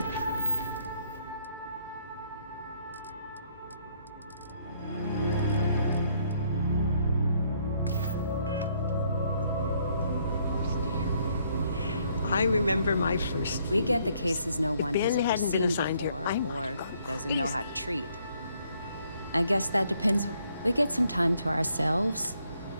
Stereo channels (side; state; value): both; inverted; correlation -0.68